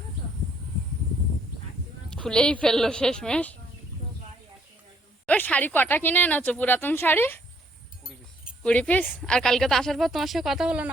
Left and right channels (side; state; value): both; normal; correlation 0.67